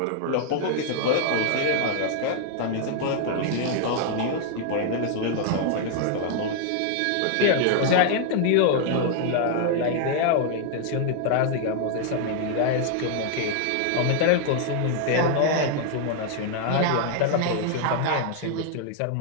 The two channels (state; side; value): different; both; correlation 0.00